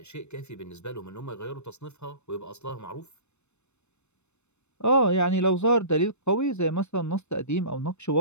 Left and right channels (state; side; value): late; right; 0.82 ms